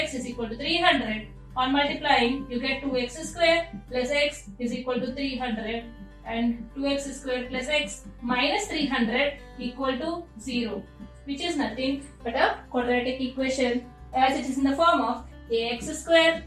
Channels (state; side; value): identical; both; correlation 1.00